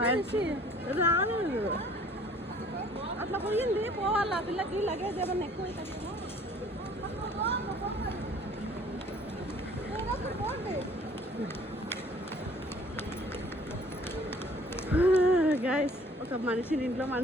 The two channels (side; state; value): both; normal; correlation 0.54